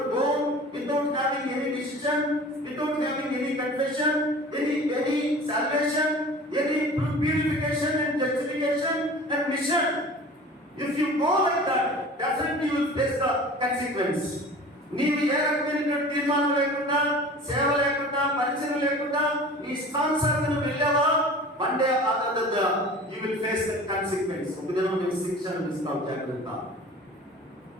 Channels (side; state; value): both; normal; correlation 0.41